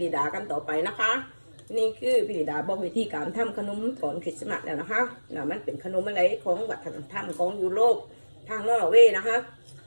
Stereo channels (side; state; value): both; inverted; correlation -1.00